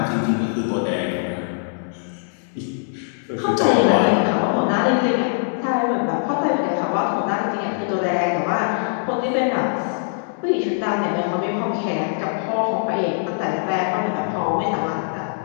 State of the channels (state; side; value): silent; right; digital silence